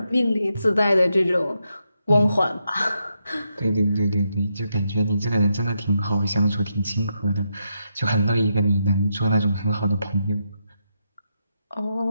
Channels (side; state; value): both; inverted; correlation -0.82